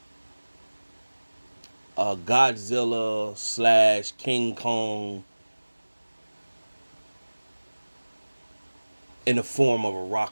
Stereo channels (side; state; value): both; inverted; correlation -1.00